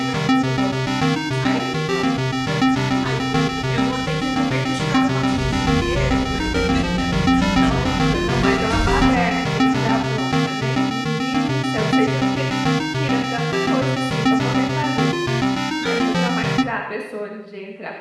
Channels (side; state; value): both; identical; correlation 1.00